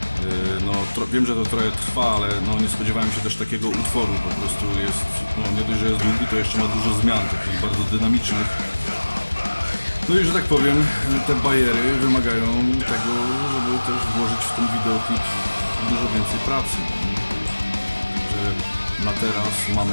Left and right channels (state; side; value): inverted; both; correlation -1.00